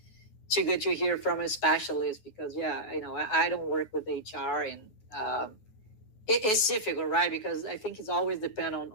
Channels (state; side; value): late; right; 9.3 ms